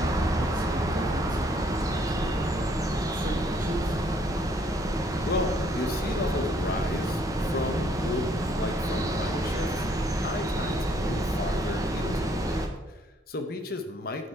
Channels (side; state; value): both; normal; correlation 0.66